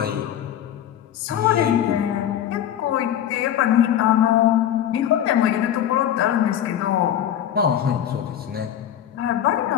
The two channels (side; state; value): right; quieter; 10.5 dB